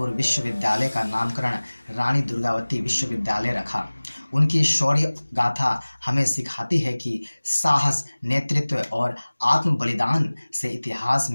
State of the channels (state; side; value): inverted; both; correlation -1.00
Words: विश्वविद्यालय का नामकरण रानी दुर्गावती विश्वविद्यालय रखा। उनकी शौर्य गाथा हमें सिखाती है कि साहस, नेतृत्व और आत्म बलिदान से इतिहास